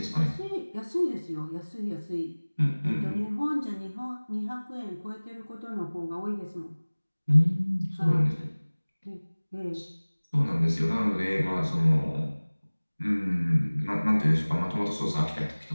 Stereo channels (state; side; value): inverted; both; correlation -1.00